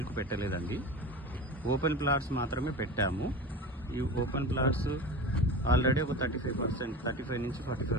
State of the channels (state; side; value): normal; both; correlation 0.30